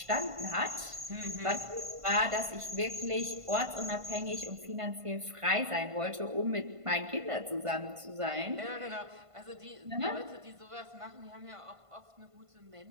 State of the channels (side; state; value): left; late; 1.5 ms